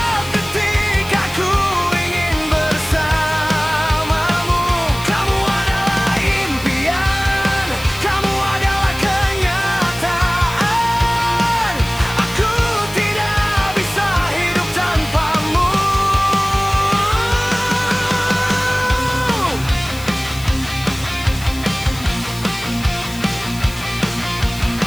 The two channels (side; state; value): left; noise; hiss, 16 dB below the sound